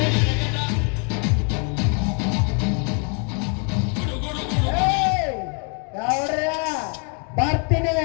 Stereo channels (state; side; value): quieter; right; 38.9 dB